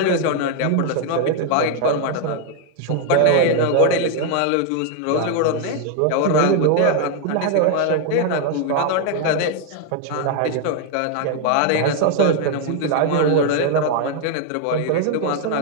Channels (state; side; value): different; both; correlation 0.00